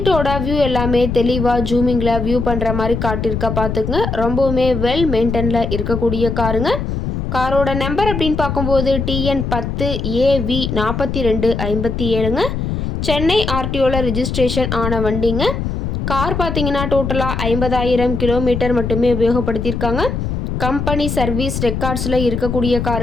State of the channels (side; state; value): left; noise; rumble, 3 dB below the sound